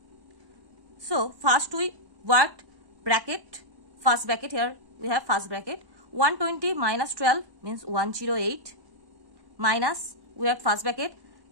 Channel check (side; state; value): left; late; 1.1 ms